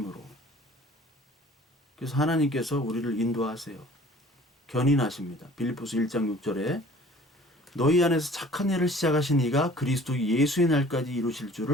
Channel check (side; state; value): both; normal; correlation 0.49